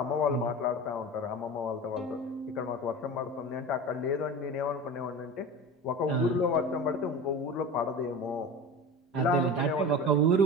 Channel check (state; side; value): normal; both; correlation 0.31